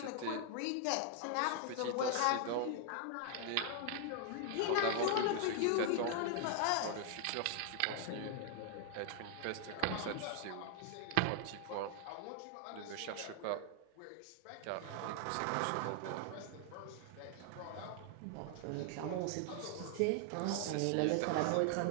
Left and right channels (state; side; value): different; both; correlation 0.00